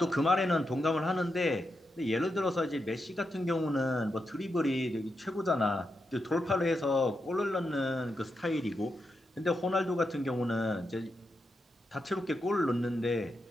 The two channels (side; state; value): both; normal; correlation 0.85